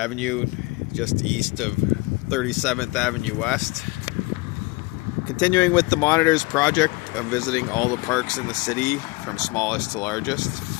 just east of 37th Avenue West. Continuing with the Monitors project of visiting all the parks in the city from smallest to largest.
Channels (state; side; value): quieter; right; 23.8 dB